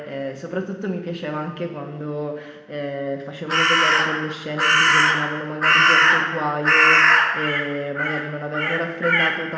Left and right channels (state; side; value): identical; both; correlation 1.00